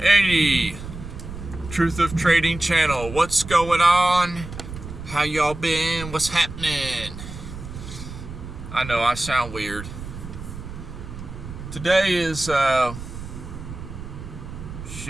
Truth of Trading channel. What's going on? How y'all been? What's happening? I know I sound weird. Today is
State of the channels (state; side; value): noise; right; rumble, 11 dB below the sound